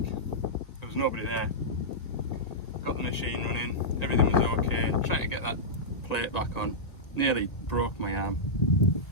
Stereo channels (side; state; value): right; late; 1.9 ms